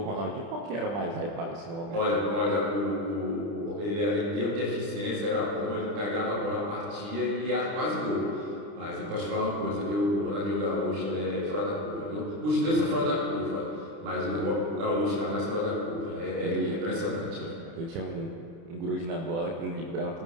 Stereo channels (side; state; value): left; late; 30 ms